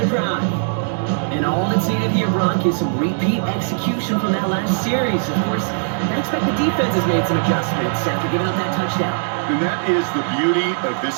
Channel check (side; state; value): left; silent; 66 dB below the other